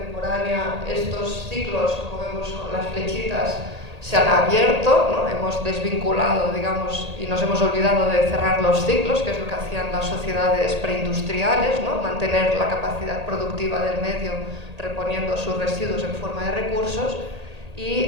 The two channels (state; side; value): late; left; 1.8 ms